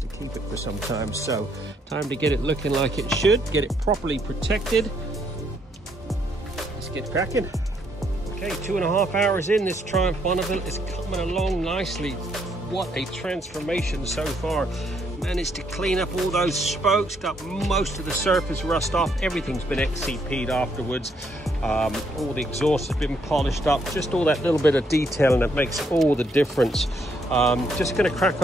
keep it for some time, so time to get it looking like it should, get it properly protected. Let's get cracking. Okay, 2.5 hours in, this Triumph Bonneville is coming along nicely. What a transformation so far. Managed to clean up all those spokes, got most of the surface rust off. Everything's been XCP'd afterwards. All the exhaust has been polished up. Just all that little bit of detail, and it makes all the difference. Just gonna crack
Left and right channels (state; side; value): normal; both; correlation 0.72